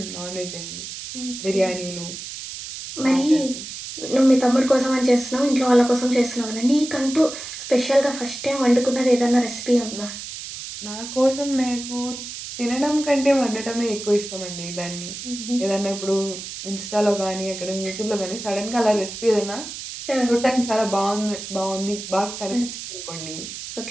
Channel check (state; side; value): noise; right; hiss, 9 dB below the sound